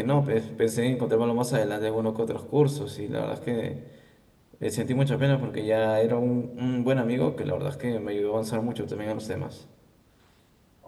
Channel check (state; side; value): identical; both; correlation 1.00